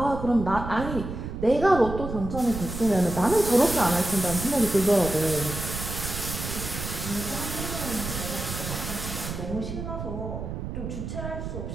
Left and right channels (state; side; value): noise; right; rumble, 6 dB below the sound